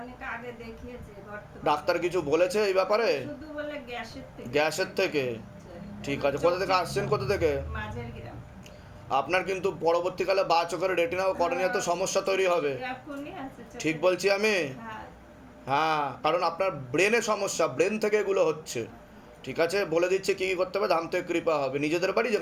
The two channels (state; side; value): identical; both; correlation 1.00